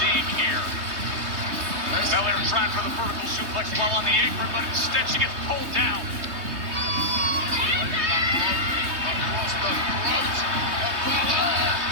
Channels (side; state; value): left; late; 3.2 ms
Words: here. Belair trying for the vertical suplex while on the apron, but instead she gets pulled down. Across the throat of Belair.